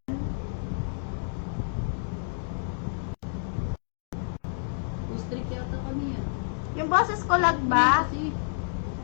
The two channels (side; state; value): right; silent; digital silence